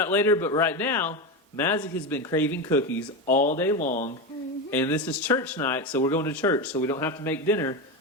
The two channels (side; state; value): both; normal; correlation 0.17